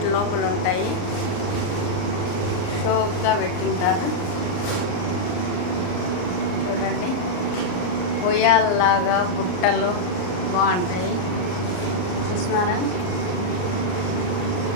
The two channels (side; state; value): right; late; 39 ms